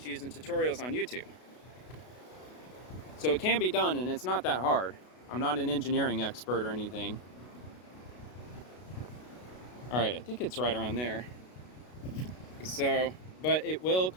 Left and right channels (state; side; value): late; right; 32 ms